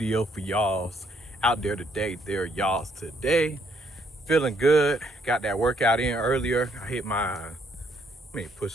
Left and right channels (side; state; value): both; normal; correlation 0.70